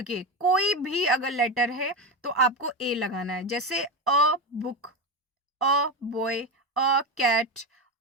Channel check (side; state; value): both; normal; correlation 0.17